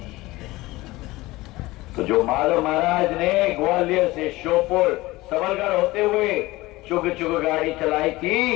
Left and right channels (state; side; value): quieter; right; 19.6 dB